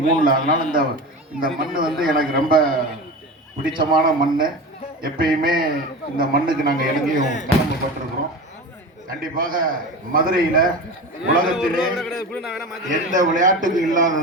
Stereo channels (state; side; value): normal; both; correlation 0.29